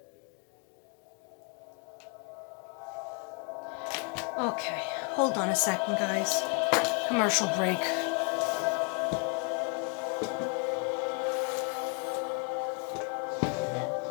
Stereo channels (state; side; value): quieter; right; 34.4 dB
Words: Okay, hold on a second, guys. Commercial break.